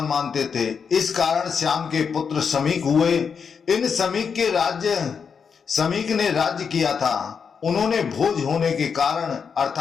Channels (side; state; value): right; quieter; 6.3 dB